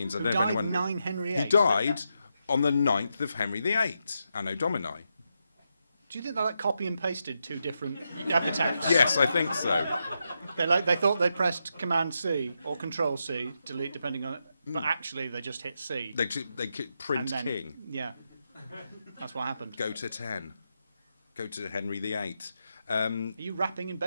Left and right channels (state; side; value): inverted; both; correlation -0.84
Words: I don't know if anyone. 9 Henry VIII. He died on the 9th of Henry VIII, Anno Domini. Do you think they copy and pasted 2 different epitaphs? Yes, I think so. They thought they pressed Command C or Control C, delete depending on it, but actually they just hit C. They print then, King. Yeah, that's what happened. Go to 10. Go to Henry VIII. Are you rapping in